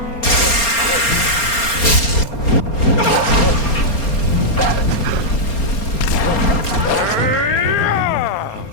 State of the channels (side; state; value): right; late; 4.3 ms